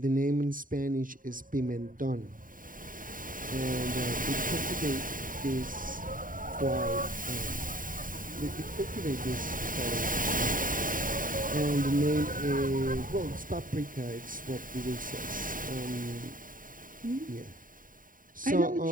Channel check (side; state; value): left; late; 0.40 ms